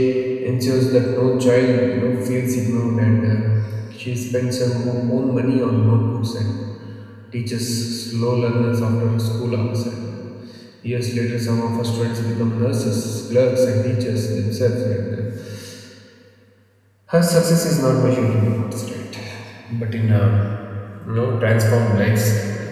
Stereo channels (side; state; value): both; identical; correlation 1.00